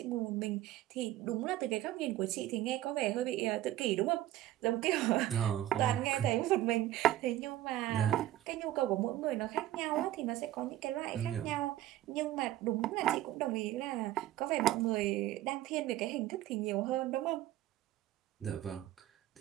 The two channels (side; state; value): left; quieter; 14.1 dB